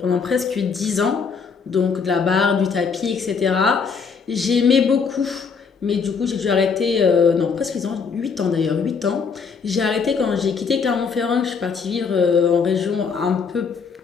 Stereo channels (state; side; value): quieter; right; 5.6 dB